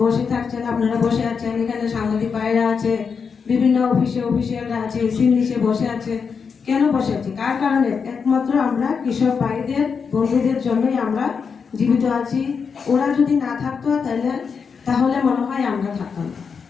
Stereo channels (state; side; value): quieter; right; 5.9 dB